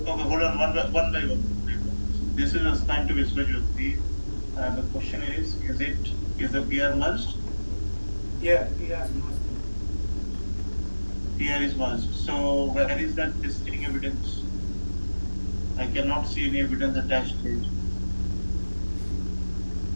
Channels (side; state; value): both; inverted; correlation -1.00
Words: Okay, hold on, one by one. This is assigned to Viswajyoti. The question is the PR merged? Yeah, PR is must. PR is merged. So where is that testing evidence? I cannot see any evidence attached here.